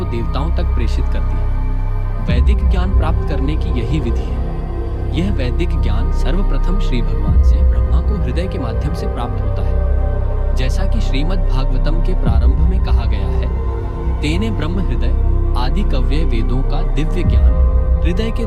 देवताओं तक प्रेषित कर दिया। वैदिक ज्ञान प्राप्त करने की यही विधि है। यह वैदिक ज्ञान सर्वप्रथम श्री भगवान से ब्रह्मा को हृदय के माध्यम से प्राप्त होता है। जैसा कि श्रीमद् भागवतम के प्रारंभ में कहा गया है, तेने ब्रह्म हृदय आदि कव्य वेदों का दिव्य ज्ञान हृदय के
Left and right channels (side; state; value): both; identical; correlation 1.00